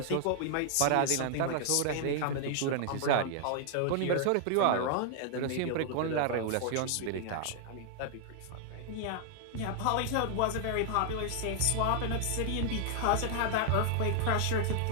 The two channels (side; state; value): both; different; correlation 0.00